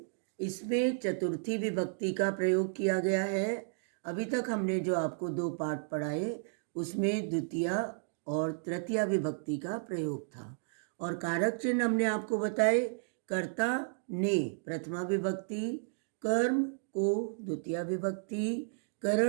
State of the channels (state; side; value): silent; left; digital silence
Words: इसमें चतुर्थी विभक्ति का प्रयोग किया गया है। अभी तक हमने जो आपको 2 पाठ पढ़ाए उसमें द्वितीया और तृतीया विभक्ति का प्रयोग था और कारक चिन्ह हमने आपको बताए। कर्ता ने प्रथमा विभक्ति, कर्म को द्वितीया विभक्ति,